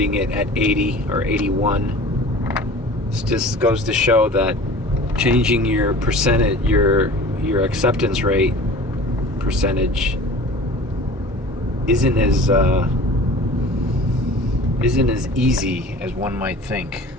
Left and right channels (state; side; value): normal; both; correlation 0.42